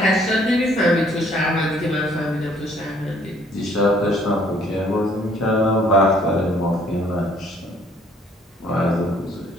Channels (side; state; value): both; normal; correlation 0.62